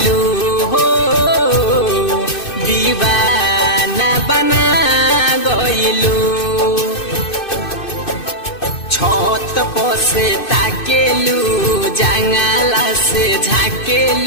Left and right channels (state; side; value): late; right; 2.6 ms